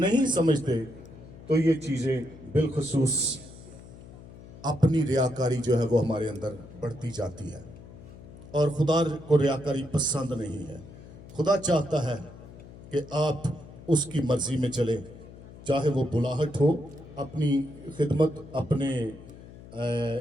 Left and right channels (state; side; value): noise; left; hum, 17 dB below the sound